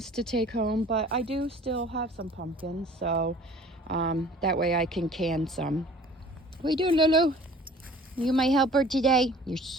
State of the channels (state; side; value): normal; both; correlation 0.48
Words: to take home, but I do still have some pumpkins, so that way I can can some. What are you doing, Lulu? You my helper today? You're